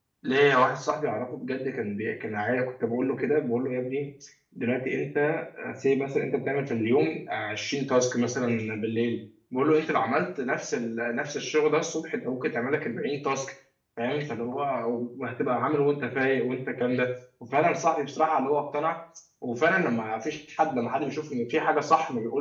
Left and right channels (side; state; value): both; identical; correlation 1.00